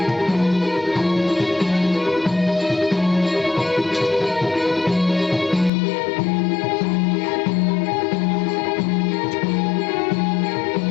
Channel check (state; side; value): drops out; right; at 5.7 s